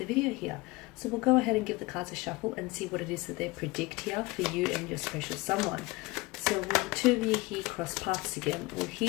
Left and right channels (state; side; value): quieter; right; 22.4 dB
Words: video here. So we'll go ahead and give the cards a shuffle and see what it is that they predict here for you and your special someone. So will the two of you here cross paths again? Will